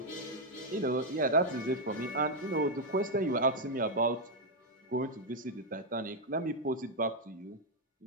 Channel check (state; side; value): normal; both; correlation 0.00